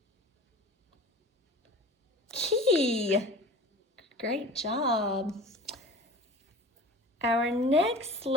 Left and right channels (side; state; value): both; normal; correlation 0.38